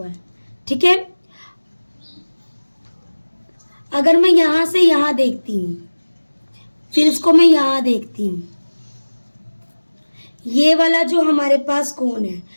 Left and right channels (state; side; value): inverted; both; correlation -1.00